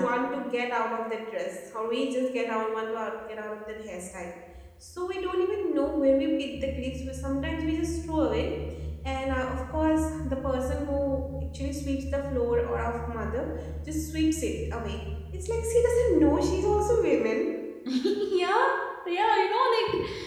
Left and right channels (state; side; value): identical; both; correlation 1.00